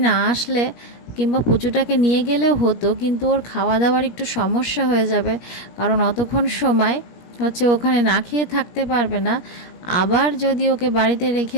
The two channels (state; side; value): late; right; 17 ms